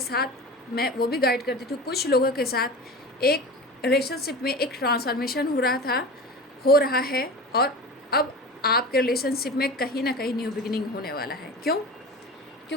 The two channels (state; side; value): normal; both; correlation 0.32